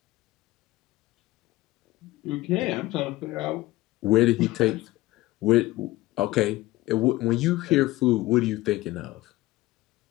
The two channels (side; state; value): right; quieter; 18.1 dB